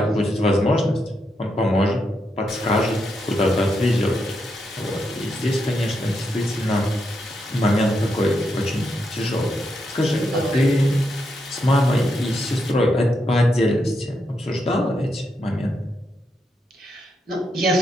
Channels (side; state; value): both; normal; correlation 0.82